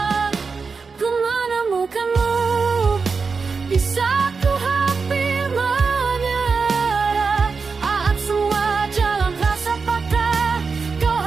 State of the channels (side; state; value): left; quieter; 4.9 dB